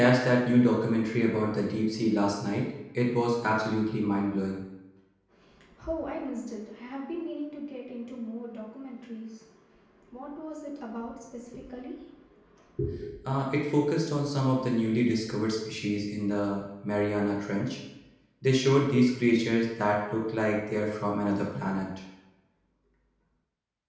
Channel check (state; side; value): identical; both; correlation 1.00